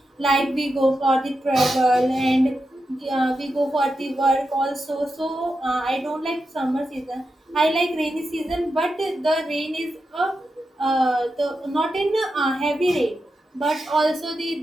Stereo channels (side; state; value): both; normal; correlation 0.88